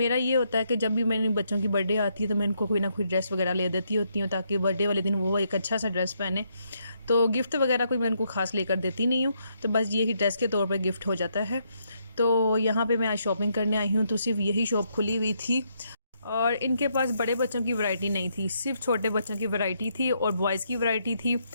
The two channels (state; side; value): inverted; both; correlation -0.76